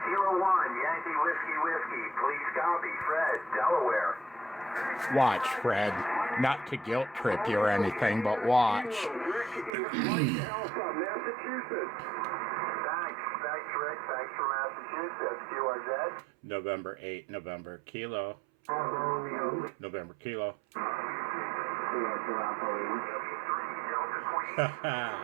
Kilo 1, Yankee Whiskey. Please copy. Fred, Delaware. Watch, Fred. Not to guilt trip you or anything, but watch. Alpha, Massachusetts. Thanks, Rick. Thanks for Massachusetts. QRZ. November 8, November Kilo. November Kilo.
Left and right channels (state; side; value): drops out; left; at 9.7 s